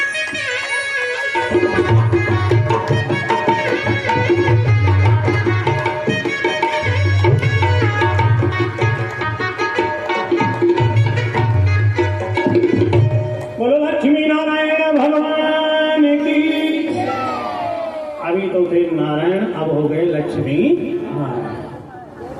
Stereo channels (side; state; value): both; identical; correlation 1.00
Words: बोलो लक्ष्मी नारायण भगवान की। अभी तो थे नारायण, अब हो गए लक्ष्मी नारायण।